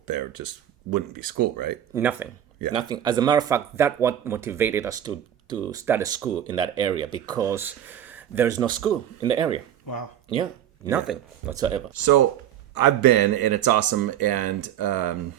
there just wouldn't be school, right? Nothing. As a matter of fact, that's what motivated us to start a school in that area, because there's no school in the area. Wow. Yeah, nothing whatsoever. So I've been, and it's awesome. And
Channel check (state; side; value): quieter; left; 10.5 dB